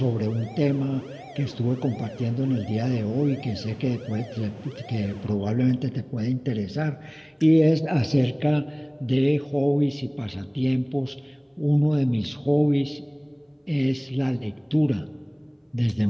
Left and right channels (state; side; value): identical; both; correlation 1.00